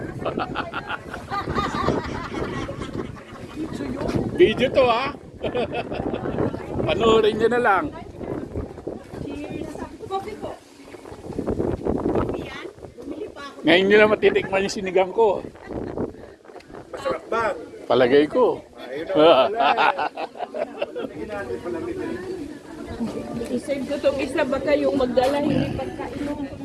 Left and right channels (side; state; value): both; identical; correlation 1.00